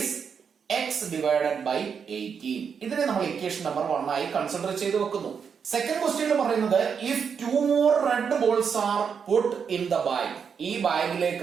X divided by 18. ഇതിനെ നമ്മൾ ഇക്വേഷൻ നമ്പർ 1 ആയി കൺസിഡർ ചെയ്ത് വെക്കുന്നു. സെക്കൻഡ് ക്വസ്റ്റ്യൻ പറയുന്നത് if 2 more red balls are put in the bag, ഈ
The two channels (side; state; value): left; quieter; 6.6 dB